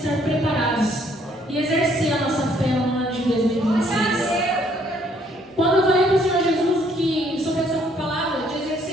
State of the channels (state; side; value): normal; both; correlation 0.65